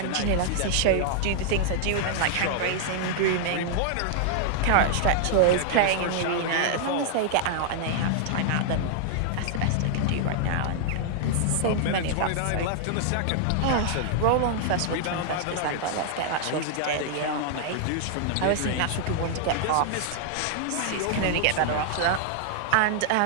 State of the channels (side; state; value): both; different; correlation -0.01